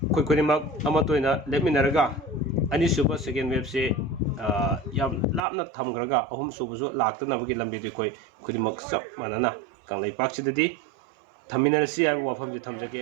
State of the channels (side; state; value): left; drops out; at 5.4 s